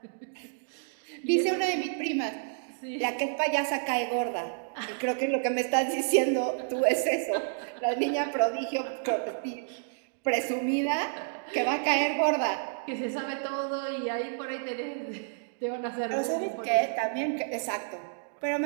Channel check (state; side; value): silent; left; digital silence